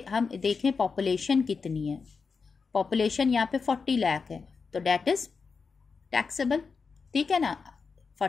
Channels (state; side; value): quieter; right; 5.1 dB